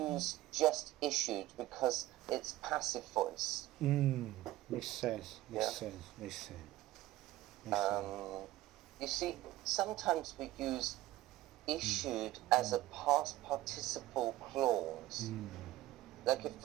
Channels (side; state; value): left; quieter; 16.1 dB